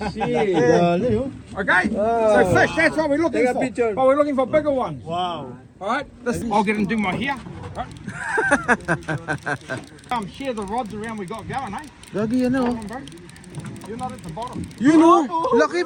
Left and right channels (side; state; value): both; identical; correlation 1.00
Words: oh. Okay? So fish, that's what we're looking Take a for. picture. But we're looking for bigger ones. Wow. Alright? I'll get and do my hair. Right. Share the rods around we got going, eh? Lagi yan oh. Come on, bro. You're not at the bottom. Yun oh, laki